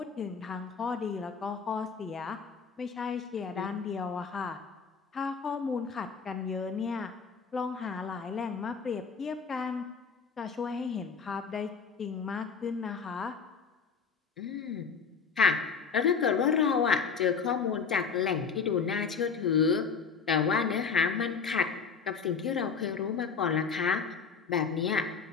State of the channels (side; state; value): right; quieter; 5.7 dB